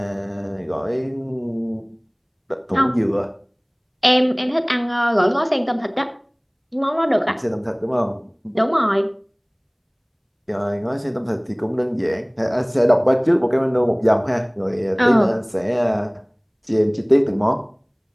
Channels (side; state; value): both; identical; correlation 1.00